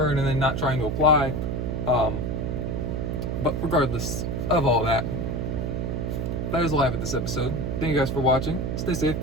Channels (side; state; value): right; noise; hum, 1 dB below the sound